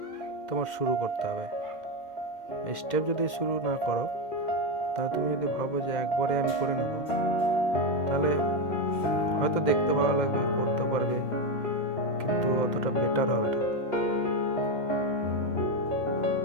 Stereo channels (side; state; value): right; late; 2.1 ms